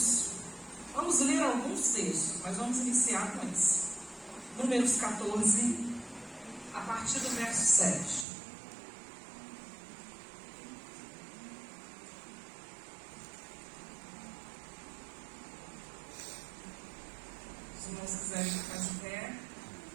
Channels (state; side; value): drops out; left; at 8.2 s